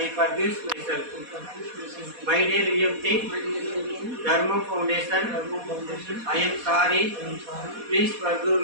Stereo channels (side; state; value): left; late; 4.1 ms